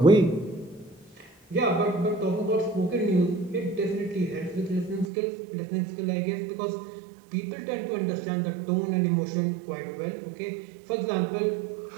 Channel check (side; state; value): left; drops out; at 5.1 s